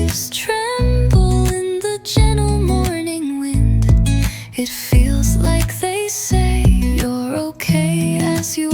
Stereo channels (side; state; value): both; identical; correlation 1.00